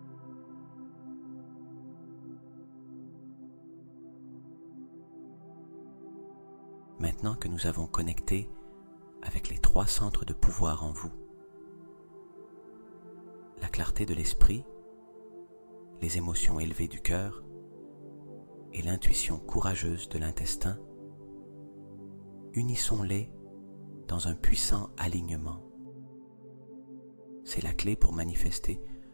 Maintenant que nous avons connecté avec les trois centres de pouvoir en vous, la clarté de l'esprit, les émotions élevées du cœur et l'intuition courageuse de l'intestin, unissons-les dans un puissant alignement. C'est la clé pour manifester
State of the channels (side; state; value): both; inverted; correlation -1.00